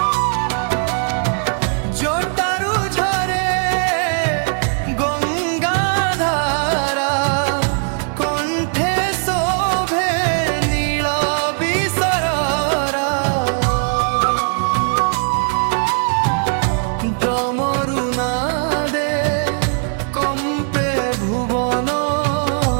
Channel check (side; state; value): left; silent; 56 dB below the other